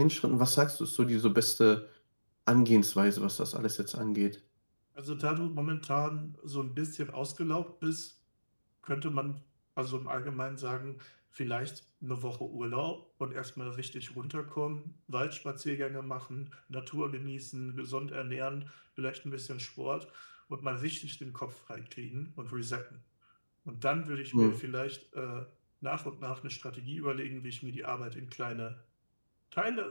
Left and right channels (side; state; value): both; inverted; correlation -1.00